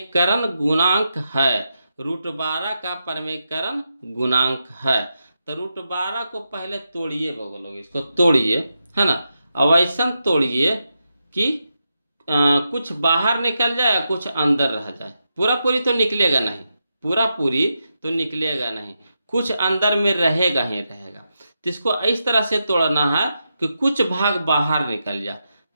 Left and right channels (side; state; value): both; inverted; correlation -0.86